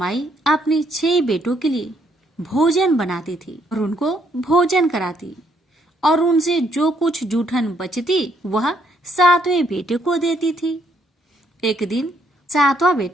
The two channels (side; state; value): both; normal; correlation 0.71